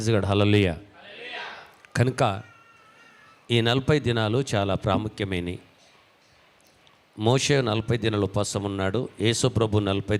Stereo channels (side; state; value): both; identical; correlation 1.00